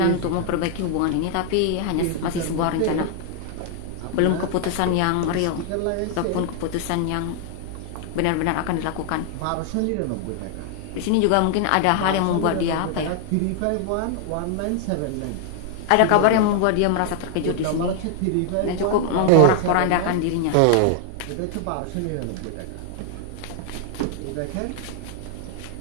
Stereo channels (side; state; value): both; different; correlation 0.00